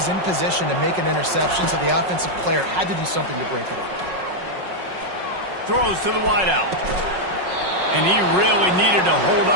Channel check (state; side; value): late; left; 5.4 ms